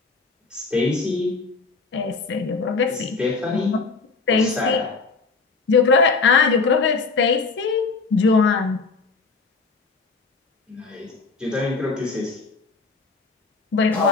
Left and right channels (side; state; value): right; quieter; 4.4 dB